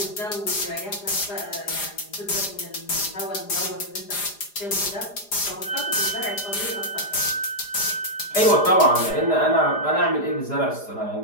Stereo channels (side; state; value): right; late; 4.9 ms